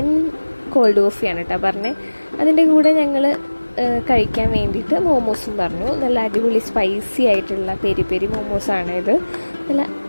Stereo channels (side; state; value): both; inverted; correlation -1.00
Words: കോൾഡ് കോഫിയാണ് കേട്ടോ പറഞ്ഞത്. അതിൻ്റെ കൂടെ ഞങ്ങൾ കഴിക്കാൻ വേണ്ടിയിട്ട് മോമോസും പറഞ്ഞു. നല്ല അടിപൊളി സ്പൈസി ആയിട്ടുള്ള പെരി പെരി മോമോസാണ് ഇത്. നല്ല